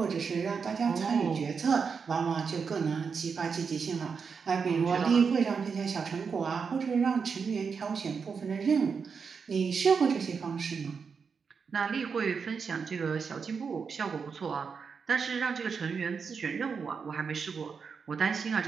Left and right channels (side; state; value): left; quieter; 5.7 dB